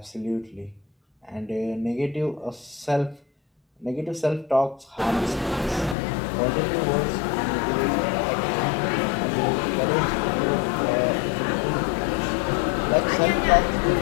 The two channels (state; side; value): drops out; right; at 6.0 s